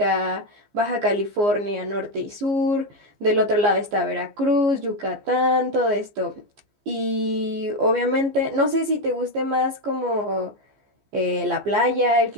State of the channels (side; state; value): left; late; 15 ms